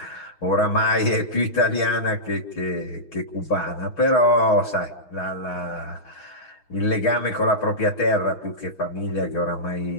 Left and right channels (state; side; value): late; right; 6.4 ms